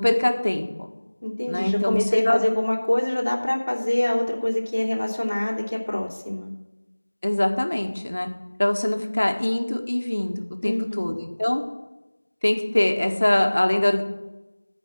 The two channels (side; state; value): both; inverted; correlation -1.00